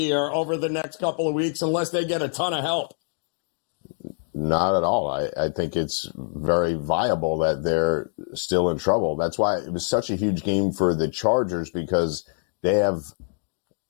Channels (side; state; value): right; silent; digital silence